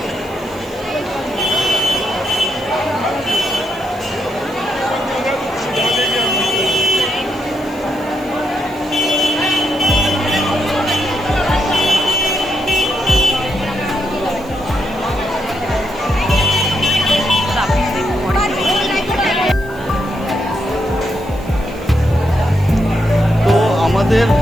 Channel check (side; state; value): right; noise; hiss, 24 dB below the sound